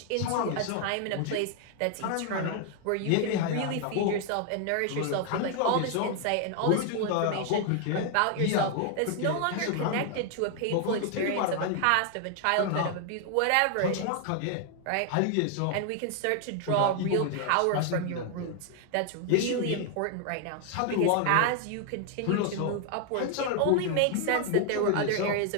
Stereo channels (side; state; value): both; different; correlation 0.00